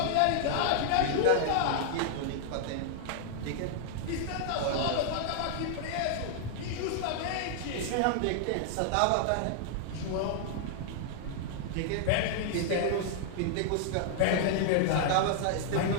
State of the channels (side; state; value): both; different; correlation -0.01